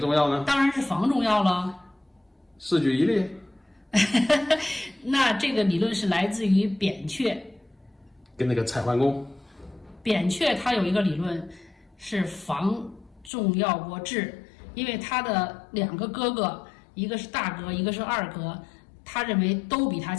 要呢？当然是防重要了。四举一例。那这个理论是来自于扁鹊，跟那个蔡桓公。扁鹊他有一个理论是防重要过治，因为他的两个哥哥，一个是大哥，一个是二哥，他认为都比他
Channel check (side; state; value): right; drops out; at 13.3 s